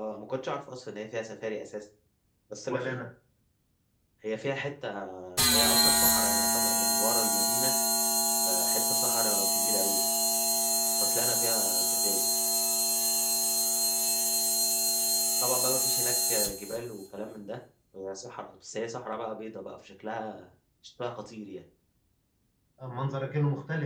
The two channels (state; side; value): identical; both; correlation 1.00